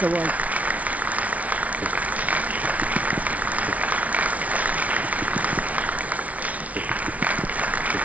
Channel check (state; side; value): late; left; 0.068 ms